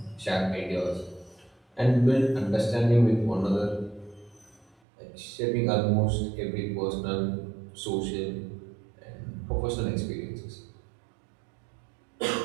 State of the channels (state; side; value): drops out; left; at 4.8 s